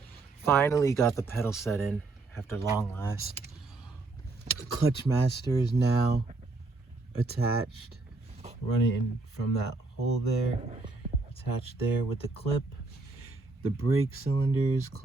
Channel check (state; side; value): quieter; left; 3.5 dB